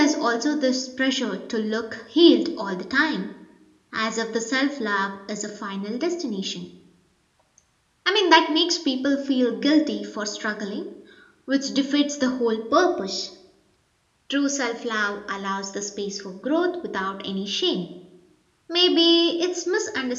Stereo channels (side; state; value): both; identical; correlation 1.00